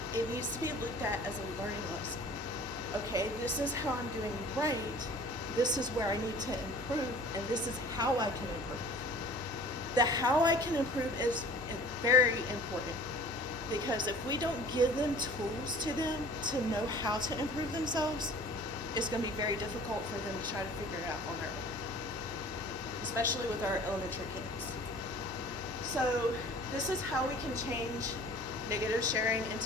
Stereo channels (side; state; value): both; normal; correlation 0.47